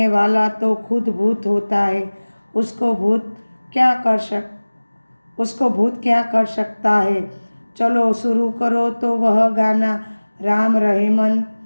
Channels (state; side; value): inverted; both; correlation -1.00